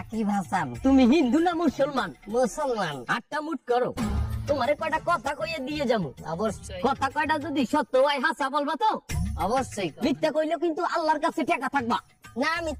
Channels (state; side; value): identical; both; correlation 1.00